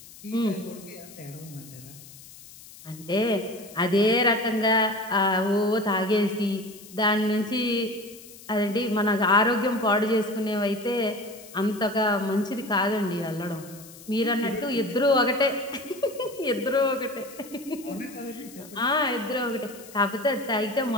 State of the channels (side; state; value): left; noise; hiss, 19 dB below the sound